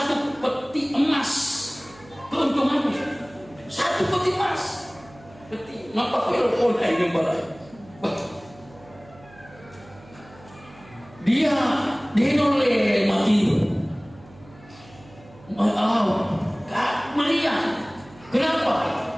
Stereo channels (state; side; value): noise; right; hum, 23 dB below the sound